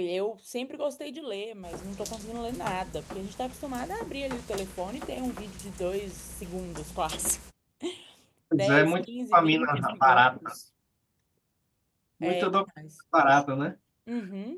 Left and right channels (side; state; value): both; identical; correlation 1.00